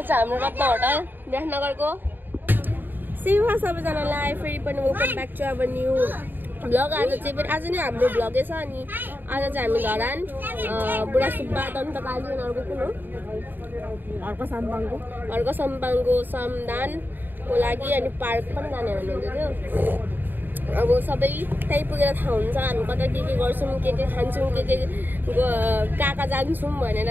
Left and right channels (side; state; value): left; late; 0.092 ms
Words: चाहिँ हाम्रो रत्न होटल विराटनगरको। सेवा सबैजनालाई फेरि पनि welcome back to our new vlog. आज नै हाम्रो भ्लगै छ। अनि आज चाहिँ हामी धरान बुढा सुब्बा दन्तकाली उनीहरूको कुन हो अर्को सम्पाङको समदानको लागि अनि पार्क पनि जाने भन्नुहुँदै थियो। अब सबै त्यही पुगेर थाहा हुन्छ हामी कता के गर्छौँ, के खान्छौँ, के कहाँ जान्छौँ भनेर